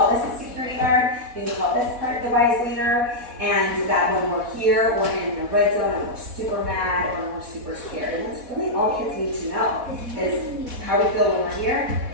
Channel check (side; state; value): left; late; 4.1 ms